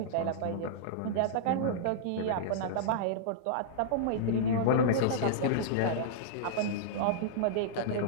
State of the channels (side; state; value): both; different; correlation -0.02